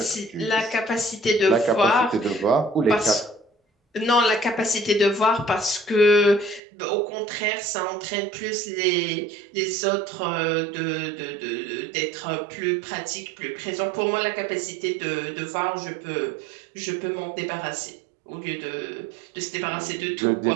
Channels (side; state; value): left; drops out; at 6.6 s